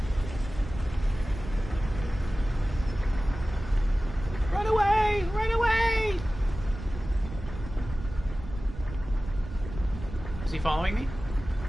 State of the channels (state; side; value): noise; right; rumble, 11 dB below the sound